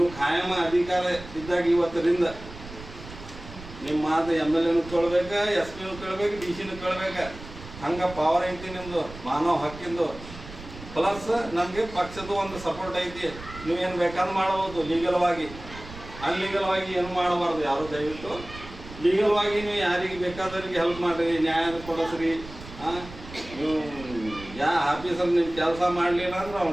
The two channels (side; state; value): right; noise; rumble, 15 dB below the sound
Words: ಖಾಯಮ ಅಧಿಕಾರ ಇದ್ದಾಗ ಇವತ್ತರಿಂದ ನಿಮ್ಮ ಮಾತು MLAನೂ ಕೇಳ್ಬೇಕು, SP ನೂ ಕೇಳ್ಬೇಕು, DC ನೂ ಕೇಳ್ಬೇಕು. ಹಂಗೆ ಪವರ್ ಐತಿ ನಿಮ್ಮದು ಮಾನವ ಹಕ್ಕಿಂದು. ಪ್ಲಸ್ ನಮಗೆ ಪಕ್ಷದ ಒಂದು ಸಪೋರ್ಟ್ ಐತಿ. ನೀವೇನು ಬೇಕಾದ್ರೂ ಮಾಡ್ಬೋದು ಲೀಗಲ್ವಾಗಿ. ಅನ್ಲೀಗಲ್ವಾಗಿ ಏನು ಮಾಡಬಾರ್ದು ಯಾರು. ದಯವಿಟ್ಟು ಲೀಗಲ್ವಾಗಿ ನೀವು ಯಾರಿಗೆ ಬೇಕಾದವ್ರಿಗೆ ಹೆಲ್ಪ್ ಮಾಡಿರಿ, ನ್ಯಾಯ ಕೊಡಿಸ್ರಿ. ನೀವು ಯಾವ ಆಫೀಸಲ್ಲಿ ನಿಮ್ಮ ಕೆಲಸ ಮಾಡಲಿಲ್ಲ ಅಂದ್ರೆ